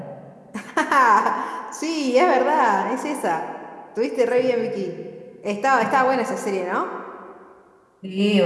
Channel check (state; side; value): identical; both; correlation 1.00